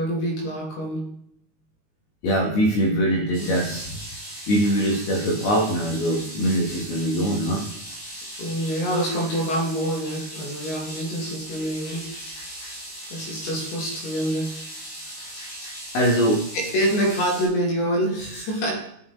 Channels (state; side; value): late; right; 19 ms